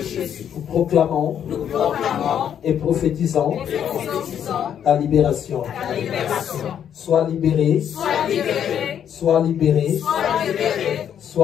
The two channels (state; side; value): quieter; right; 9.1 dB